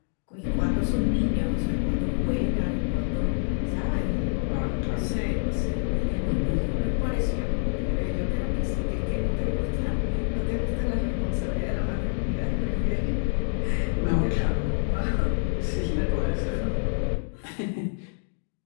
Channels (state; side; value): silent; right; 55 dB below the other